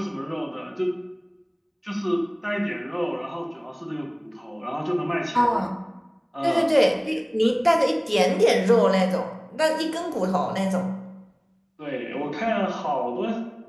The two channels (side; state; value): both; identical; correlation 1.00